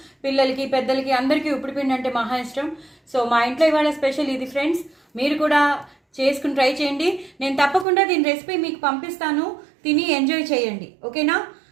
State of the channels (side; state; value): left; drops out; at 7.9 s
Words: పిల్లలకి పెద్దలకి అందరికీ ఉప్పిడిపిండి అంటే మహా ఇష్టం. సో మా ఇంట్లో ఇవాళ స్పెషల్ ఇది ఫ్రెండ్స్. మీరు కూడా చేసుకుని ట్రై చేయండి. నేను తప్పకుండా దీని రెసిపీ మీకు పంపిస్తాను, తిని ఎంజాయ్ చేయండి. ఓకేనా?